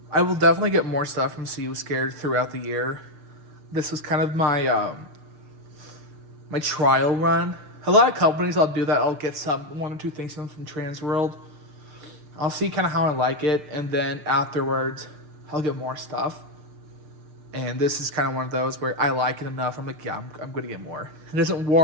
I will definitely get more stuff from See You Scared throughout the year. This was kind of my my trial run. A lot of companies I'll do that. I'll get one or two things from Transworld. I'll see kind of how I like it, and then afterwards I'll get more stuff. And this is kind of one of those where I like it enough. I'm like, yeah, I'm going to get more. It doesn't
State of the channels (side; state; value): left; late; 6.7 ms